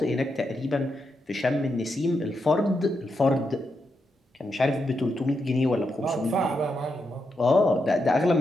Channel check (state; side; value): normal; both; correlation 0.84